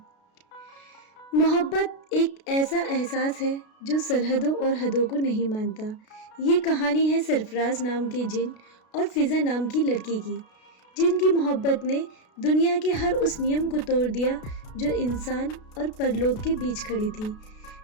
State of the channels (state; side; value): late; right; 33 ms